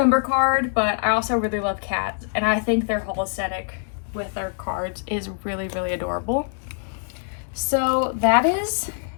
card, but I also really love cats, and I think their whole aesthetic with their cards is really, really adorable. So that is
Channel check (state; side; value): silent; right; 63 dB below the other